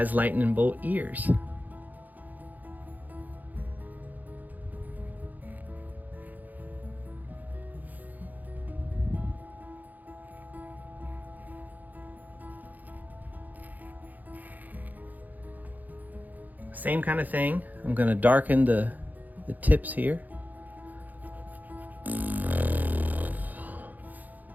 lightning bolt ears. Same kind of thing. I'm going to darken the tips here.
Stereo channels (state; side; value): late; left; 0.082 ms